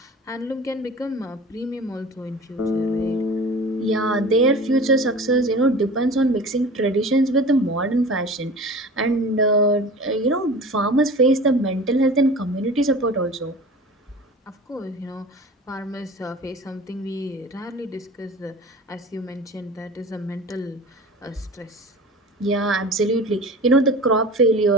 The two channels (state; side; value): normal; both; correlation 0.38